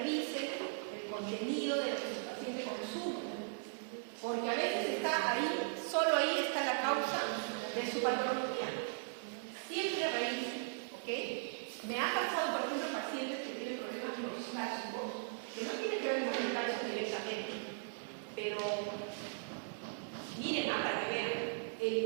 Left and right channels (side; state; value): left; silent; digital silence